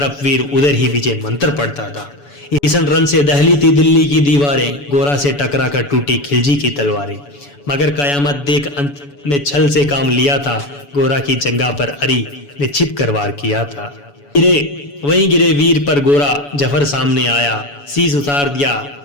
वीर उधर ही विजय मंत्र पढ़ता था। ईसन रण से दहली थी दिल्ली की दीवारें, गोरा से टकरा कर टूटी खिलजी की तलवारें। मगर कयामत देख अंत में छल से काम लिया था, गोरा की जंगा पर अरी ने छिप कर वार किया था। गिरे वहीं गिरे वीर पर गोरा जफर सामने आया, शीश उतार दिया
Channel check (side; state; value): right; late; 7.0 ms